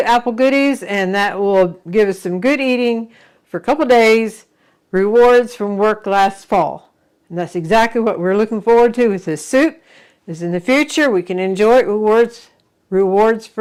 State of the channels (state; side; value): identical; both; correlation 1.00